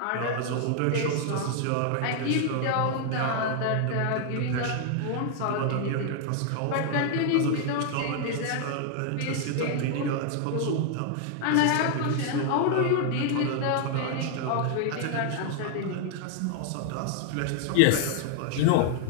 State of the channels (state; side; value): different; both; correlation 0.00